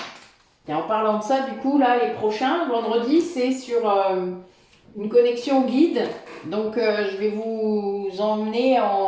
Et en parlant de ça, du coup, là, les prochains, vendredi, c'est sur une connexion guide. Donc, je vais vous emmener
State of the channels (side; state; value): both; identical; correlation 1.00